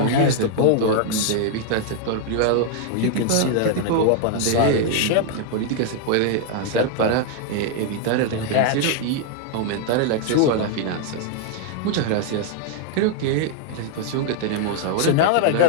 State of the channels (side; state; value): both; different; correlation 0.00